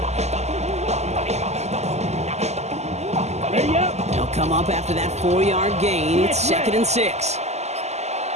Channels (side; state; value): left; late; 0.32 ms